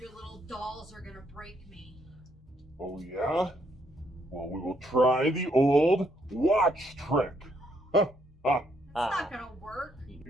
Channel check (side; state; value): both; normal; correlation 0.72